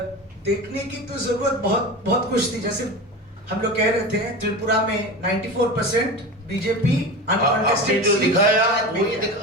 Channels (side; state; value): both; normal; correlation 0.28